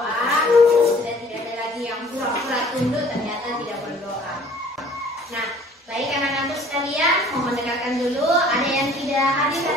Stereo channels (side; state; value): both; normal; correlation 0.53